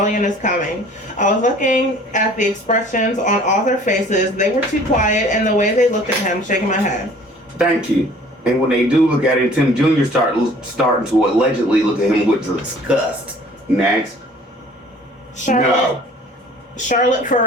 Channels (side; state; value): both; normal; correlation 0.51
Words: is coming. I was looking at the expressions on all their faces. They were too quiet, and the way they looked at him, shaking my head. Thank you. And when they do look at him, Tim Jr. starting to allegedly look at him with disgust. Next. Charlotte